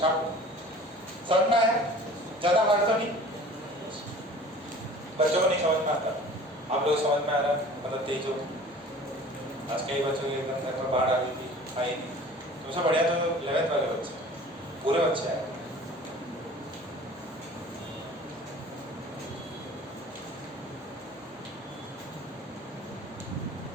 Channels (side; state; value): both; normal; correlation 0.45